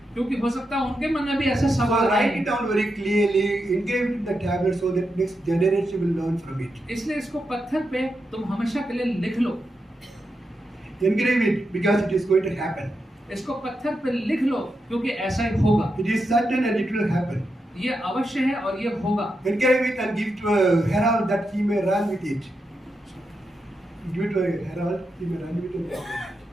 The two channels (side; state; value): both; normal; correlation 0.86